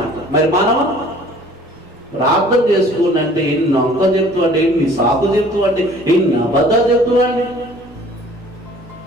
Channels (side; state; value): both; normal; correlation 0.52